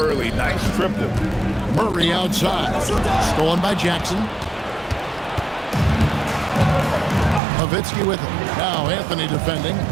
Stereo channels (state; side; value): drops out; left; at 7.4 s